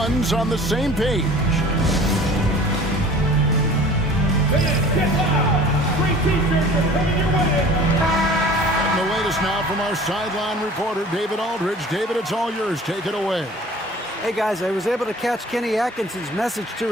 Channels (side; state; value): both; normal; correlation 0.46